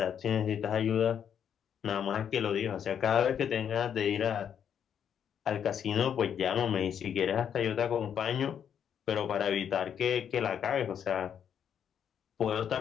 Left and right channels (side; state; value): right; quieter; 8.5 dB